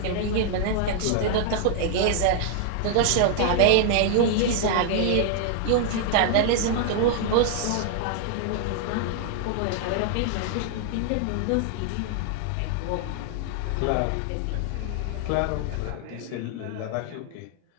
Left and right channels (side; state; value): both; different; correlation 0.00